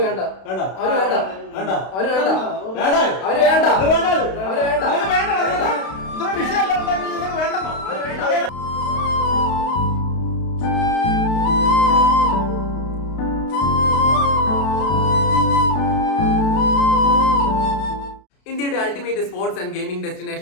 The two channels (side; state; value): right; late; 32 ms